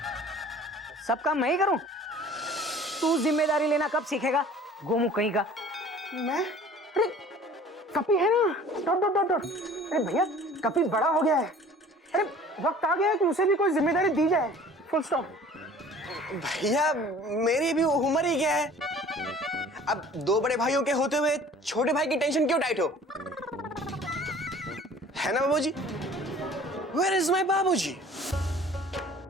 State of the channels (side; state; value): both; normal; correlation 0.48